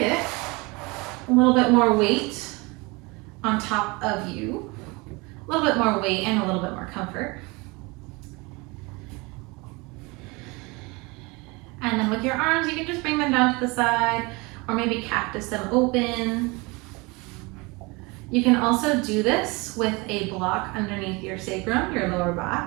a little bit more weight on top of you. A little bit more weight and a little bit more comfort. And then with your arms, you can just bring them down to the side, or maybe cactus them open. You can also do this with a block underneath your sacrum, your lower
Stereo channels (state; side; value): quieter; left; 26.1 dB